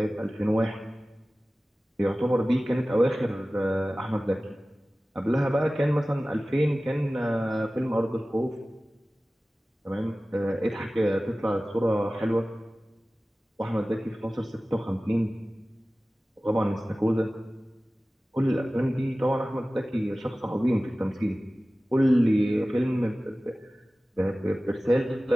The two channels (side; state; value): both; normal; correlation 0.97